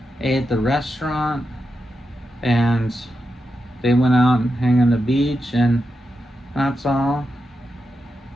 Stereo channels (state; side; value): normal; both; correlation 0.88